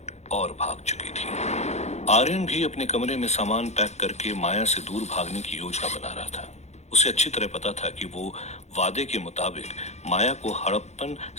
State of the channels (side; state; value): right; late; 0.32 ms